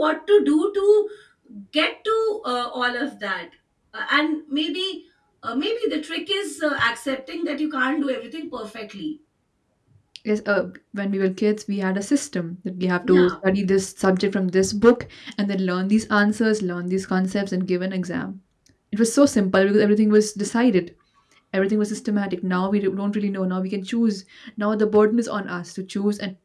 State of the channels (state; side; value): identical; both; correlation 1.00